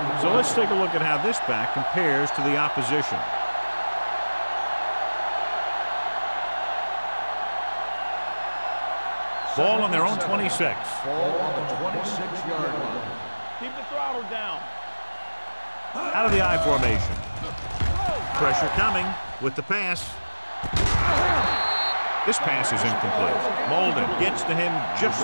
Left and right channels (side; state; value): both; inverted; correlation -1.00